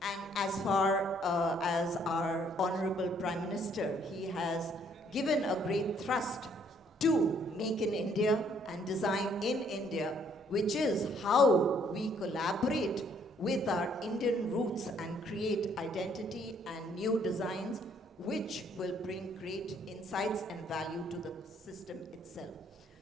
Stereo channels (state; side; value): normal; both; correlation 0.65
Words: And as far as our Honorable Prime Minister, he has given a great thrust to make in India and design in India, which is how we collaborate with our Indian roots and create identity and new designs which will bring great insights and value to the system itself.